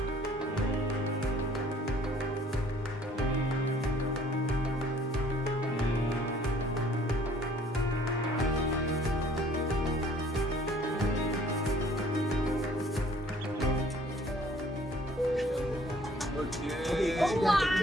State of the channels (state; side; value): normal; both; correlation 0.56